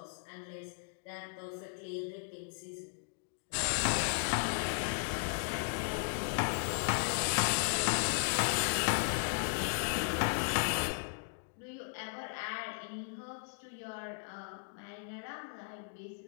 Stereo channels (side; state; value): right; silent; digital silence